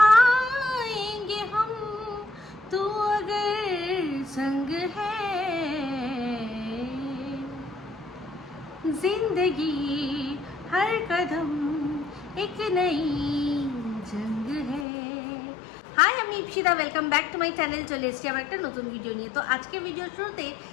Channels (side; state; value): right; drops out; at 14.9 s